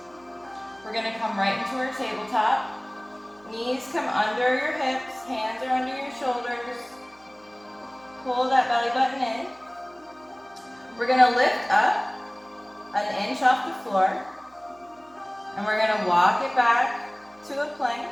We're going to come right into our tabletop. Knees come under your hips, hands are under your shoulders. Pull that belly button in. We're going to lift up 1 inch off the floor. And we're going to walk it back to a plank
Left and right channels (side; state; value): right; noise; hum, 30 dB below the sound